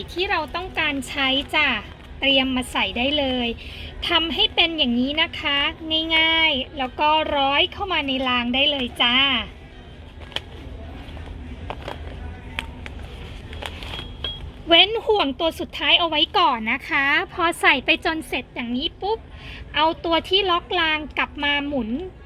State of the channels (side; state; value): both; identical; correlation 1.00